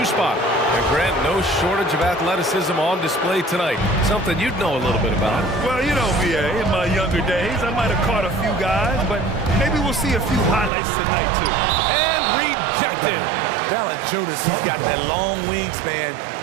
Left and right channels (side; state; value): left; drops out; at 10.7 s